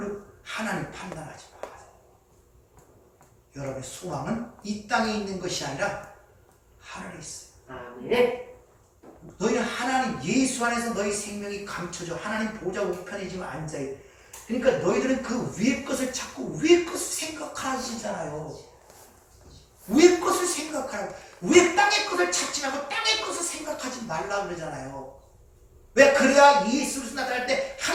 하나님 판단하지 마세요. 여러분의 소망은 이 땅에 있는 것이 아니라 하늘에 있어요. 아멘. 너희는 하나님 예수 안에서 너희 생명이 감춰져 하나님 보좌 우편에 지금 앉아있어. 그러니까 너희들은 그 위의 것을 찾고 위의 것을 생각하시잖아요. 위의 것을 생각하라고. 위의 땅의 것을 찾지 말고 땅의 것을 생각하지 말라 그러잖아요. 왜? 그래야 예수 그리스도 나타날 때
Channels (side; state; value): both; identical; correlation 1.00